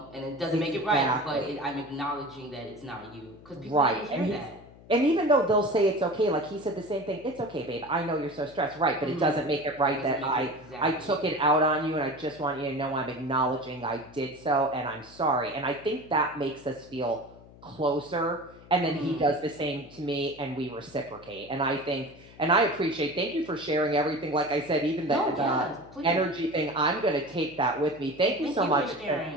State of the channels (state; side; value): noise; left; hum, 22 dB below the sound